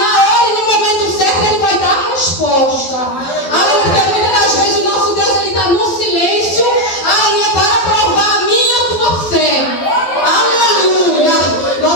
hora e no momento certo, Ele vai dar a resposta. Aleluia, porque muitas das vezes o nosso Deus, Ele está no silêncio, aleluia, para provar a minha e a tua fé. Aleluia,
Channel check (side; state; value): right; late; 12 ms